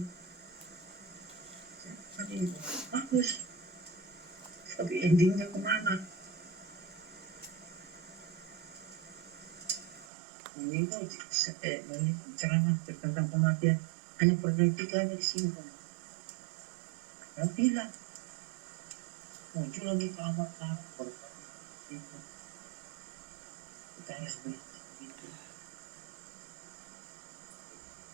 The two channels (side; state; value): left; drops out; at 10.1 s